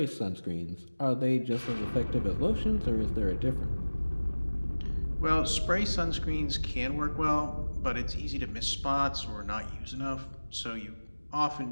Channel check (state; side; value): inverted; both; correlation -1.00